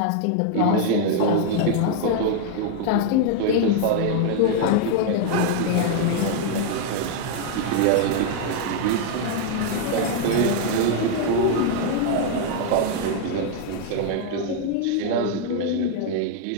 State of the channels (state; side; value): different; both; correlation 0.00